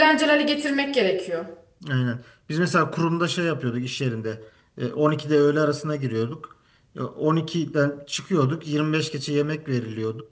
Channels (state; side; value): identical; both; correlation 1.00